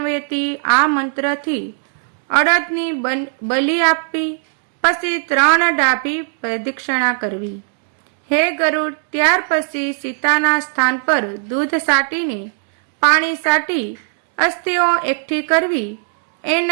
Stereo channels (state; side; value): silent; left; digital silence